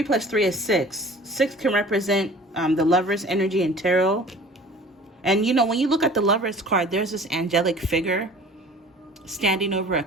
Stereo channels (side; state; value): both; normal; correlation 0.46